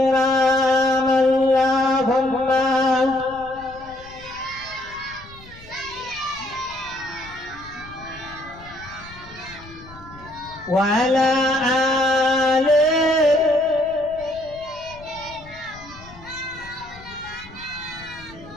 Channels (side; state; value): left; noise; rumble, 20 dB below the sound